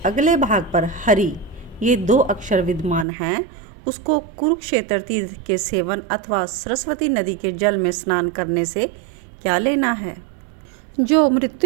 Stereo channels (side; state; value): left; drops out; at 3.1 s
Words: अगले भाग पर हरि ये 2 अक्षर विद्यमान हैं, उसको कुरुक्षेत्र तीर्थ के सेवन अथवा सरस्वती नदी के जल में स्नान करने से क्या लेना है। जो